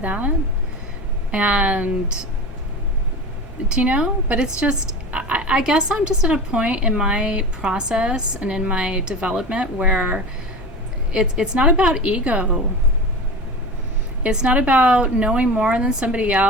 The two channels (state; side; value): normal; both; correlation 0.31